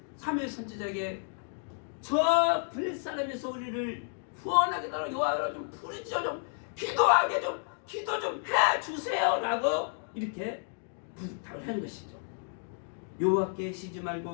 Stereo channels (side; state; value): right; silent; 57 dB below the other